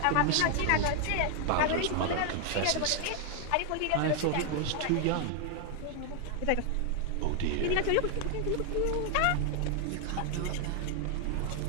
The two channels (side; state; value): both; different; correlation 0.00